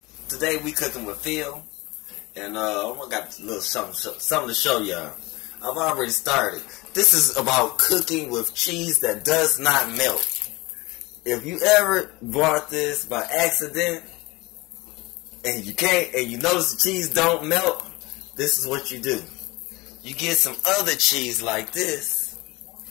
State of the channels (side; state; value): right; quieter; 22.5 dB